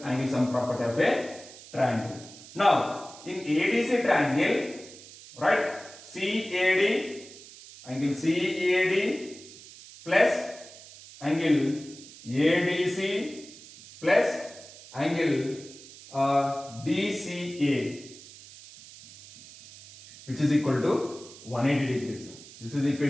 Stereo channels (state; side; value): noise; right; hiss, 18 dB below the sound